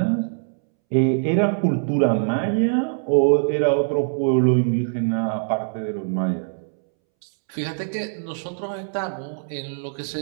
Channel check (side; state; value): left; silent; 64 dB below the other